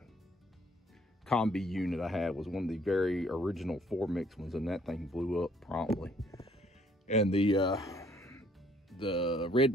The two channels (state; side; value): normal; both; correlation 0.63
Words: combi unit I had was one of the very original 4-mix ones, and that thing blew up promptly. And the Red